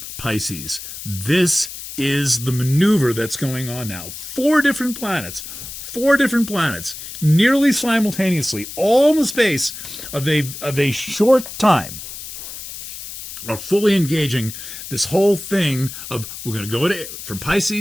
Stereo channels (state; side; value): noise; left; hiss, 11 dB below the sound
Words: Pisces. This is the maneuver that's going on now. 4 different planets, nearly simultaneously, all in the space of a short time, are fully engaging this whole thing of we're going to go from